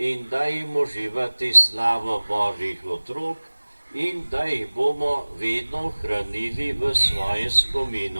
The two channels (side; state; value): both; inverted; correlation -1.00